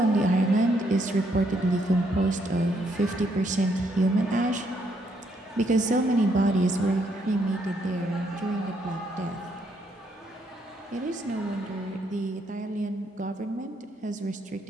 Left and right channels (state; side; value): normal; both; correlation 0.73